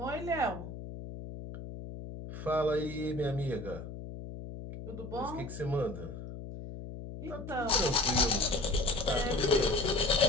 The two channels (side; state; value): left; noise; hum, 10 dB below the sound